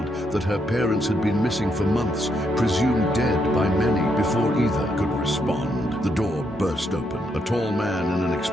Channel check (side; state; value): both; normal; correlation 0.77